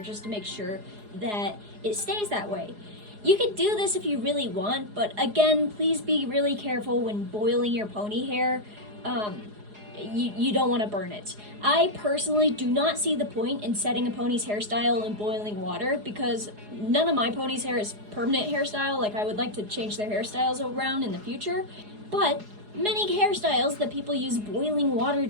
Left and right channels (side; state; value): left; late; 4.8 ms